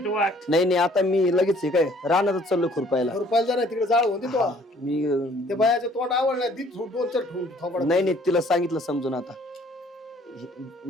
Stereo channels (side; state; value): both; normal; correlation 0.58